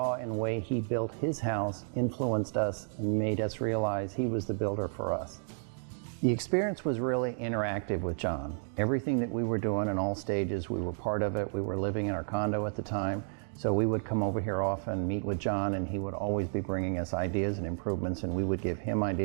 in the way he built his house influenced us and made us realize he was the builder for us. The experience was really interactive with John. Everything that we were doing in all stages, we were part of it. We were living in our condo at the time. So we would come over here often, meet with John, and he would always be bringing us ideas and improvements, and we would give him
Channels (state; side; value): silent; left; digital silence